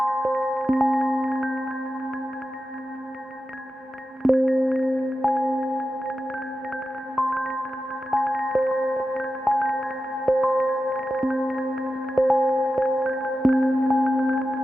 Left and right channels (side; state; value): both; normal; correlation 0.91